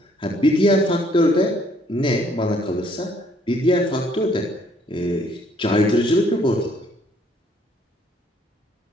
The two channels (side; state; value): both; normal; correlation 0.64